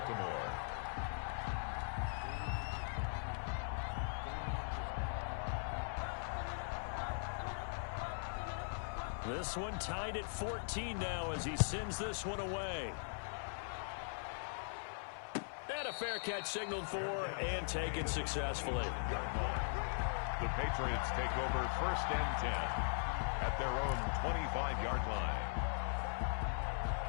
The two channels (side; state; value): right; silent; 51 dB below the other